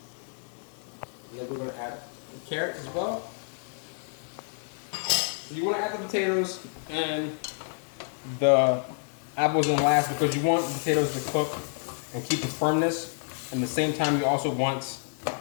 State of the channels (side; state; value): right; silent; 58 dB below the other